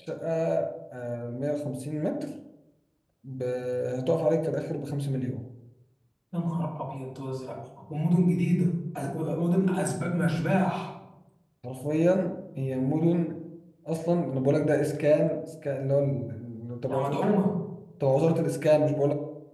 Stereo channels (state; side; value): identical; both; correlation 1.00